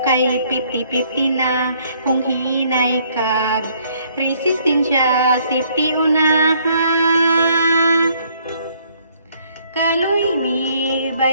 kay 50-50 na. Kung hinay kag resistensya, safety unahan. Kaloy mi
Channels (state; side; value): inverted; both; correlation -0.65